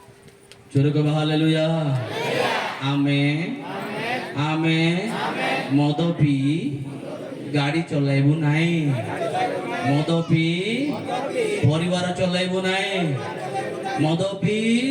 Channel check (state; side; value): identical; both; correlation 1.00